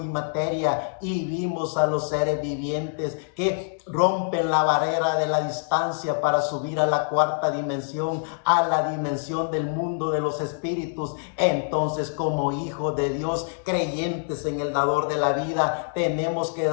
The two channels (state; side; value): silent; right; digital silence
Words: materia. Y vimos a los seres vivientes que rompen la barrera de la distancia para subir a la cuarta dimensión, a la dimensión del mundo de los espíritus. Entonces, como hijos de Dios, creyentes en el dador de la vida, tenemos que